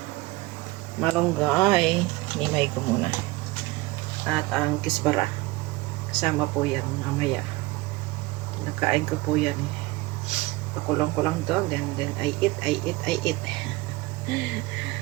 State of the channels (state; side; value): quieter; left; 21.2 dB